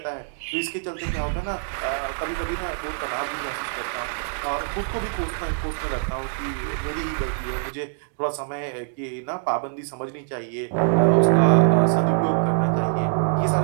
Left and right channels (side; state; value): left; silent; digital silence